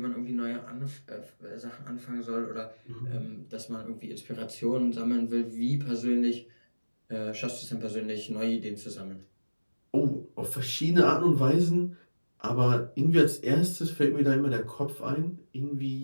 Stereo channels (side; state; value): both; inverted; correlation -1.00